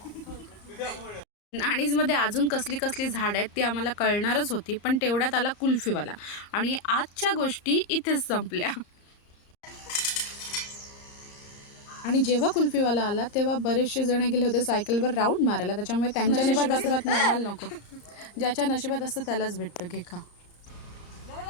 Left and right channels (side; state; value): right; late; 34 ms